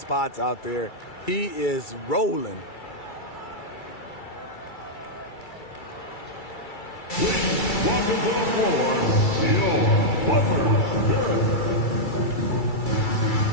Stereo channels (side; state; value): right; late; 2.3 ms